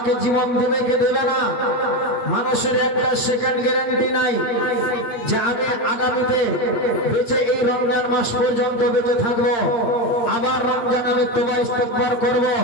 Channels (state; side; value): late; right; 8.6 ms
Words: জীবন দেবে কে দেবে না, মানুষের একটা সেকেন্ড গ্যারান্টি নাই যে আমি আগামীতে বেঁচে এই রমজান মাস পর্যন্ত বেঁচে থাকবো, আবার রমজান আমি তওবা ইস্তেগফার করব।